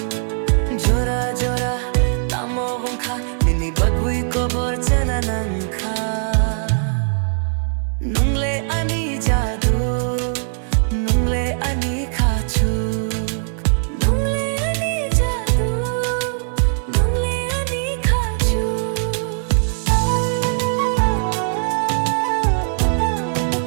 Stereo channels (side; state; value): left; silent; digital silence